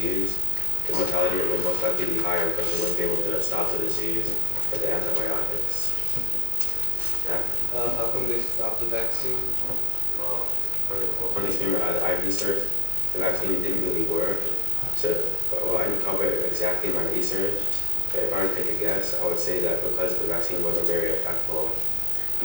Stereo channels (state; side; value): late; left; 2.2 ms